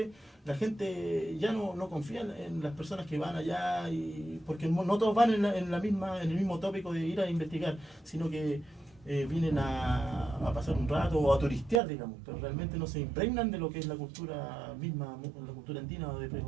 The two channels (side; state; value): left; drops out; at 11.8 s